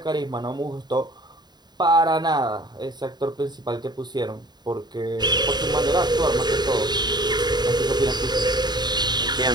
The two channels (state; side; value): late; left; 0.20 ms